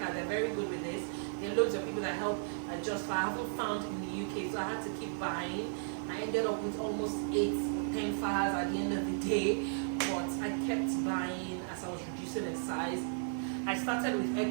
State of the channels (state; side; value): silent; left; digital silence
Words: they're very good with this. There are loads of people that help adjust faha. I haven't found in the UK, so I had to keep buying. I ended up with almost 8 or 10 fahas at the end of the day, but I kept buying as I was reducing in size. I started with